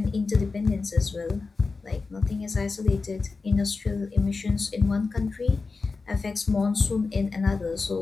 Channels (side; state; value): right; quieter; 4.2 dB